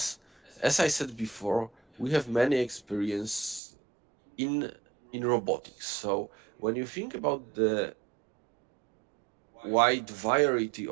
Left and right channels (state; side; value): drops out; left; at 3.6 s